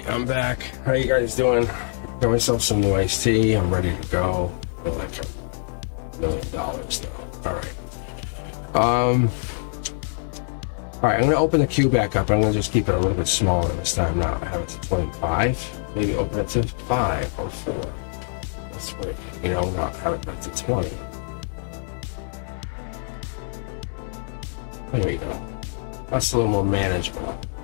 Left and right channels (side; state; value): right; silent; digital silence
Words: I'm back. How you guys doing? Got myself some new iced tea. I'm ready to go. I feel like $1 million though. Alright. Alright, I'm gonna open the queue back up. I'm gonna just keep it a little bit smaller this time now. I have it to 25. Maybe open it to 5 or 4. That's right. You know, not have it back to 20. There we go. That's a little more manageable.